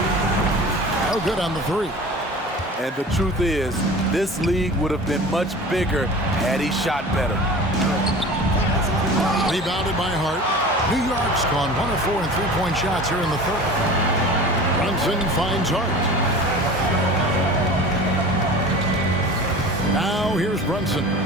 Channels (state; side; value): normal; both; correlation 0.38